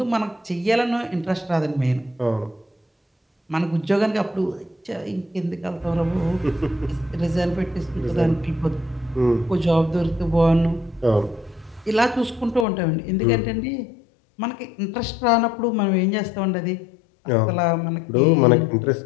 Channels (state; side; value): drops out; right; at 12.7 s